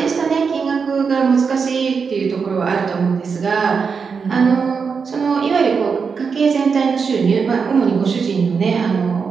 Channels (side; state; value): left; quieter; 5.6 dB